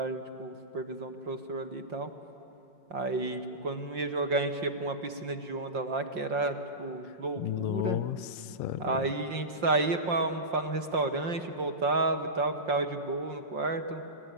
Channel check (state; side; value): late; left; 5.6 ms